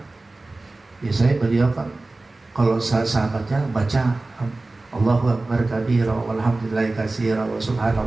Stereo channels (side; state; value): left; quieter; 3.1 dB